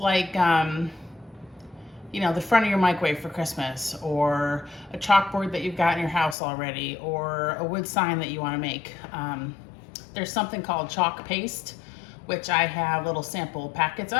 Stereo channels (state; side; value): drops out; right; at 6.4 s